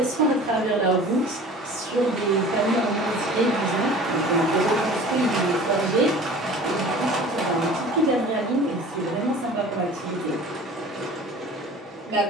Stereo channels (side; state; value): both; normal; correlation 0.43